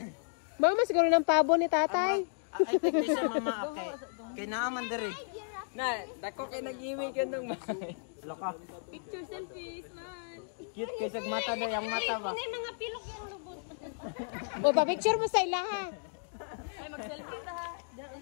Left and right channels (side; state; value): right; silent; digital silence